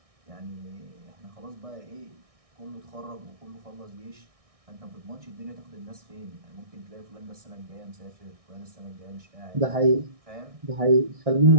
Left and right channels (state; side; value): late; left; 1.6 ms